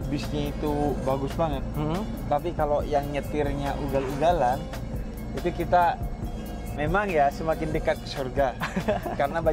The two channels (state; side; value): identical; both; correlation 1.00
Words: bisnya itu bagus banget, tapi kalau yang nyetirnya ugal-ugalan, itu kita memang ya semakin dekat ke surga. Karena